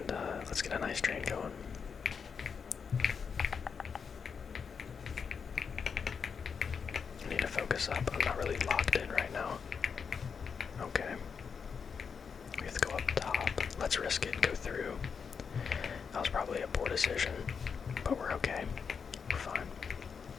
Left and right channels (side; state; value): right; quieter; 6.2 dB